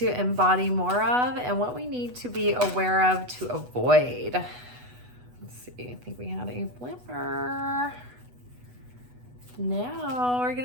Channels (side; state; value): left; late; 8.1 ms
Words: embody more of, and what we need to be aware of to avoid. Let's see, I think we had a flipper. Now we're